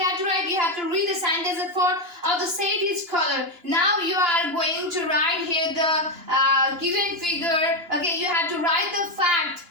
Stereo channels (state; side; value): late; left; 2.9 ms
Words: have to write? You have to read the sentence at 4 of the set is color. Now you are going to write here the given figure. Okay, you have to write the fact.